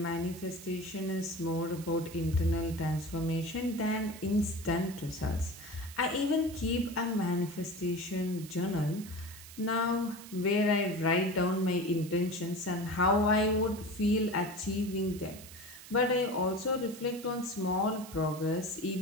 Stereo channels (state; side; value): noise; right; hiss, 16 dB below the sound